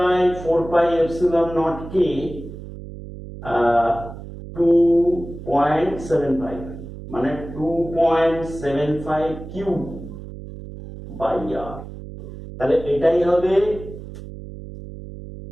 কে 2.75, মানে 2.75 কিউ বাই আর। তাহলে এটাই হবে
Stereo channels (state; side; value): noise; right; hum, 12 dB below the sound